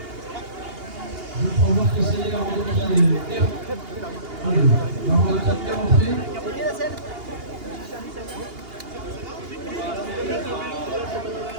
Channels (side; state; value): left; late; 2.8 ms